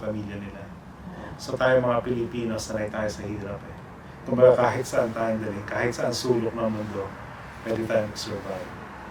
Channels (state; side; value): identical; both; correlation 1.00